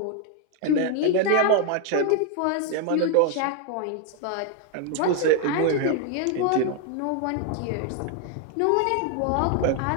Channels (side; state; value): both; different; correlation 0.00